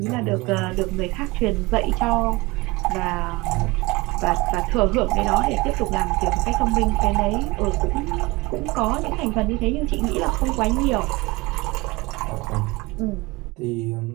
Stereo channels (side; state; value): left; quieter; 23.1 dB